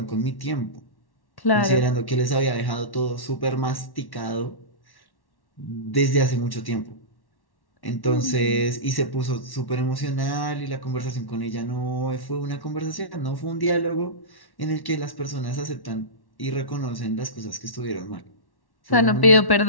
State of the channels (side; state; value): right; late; 1.1 ms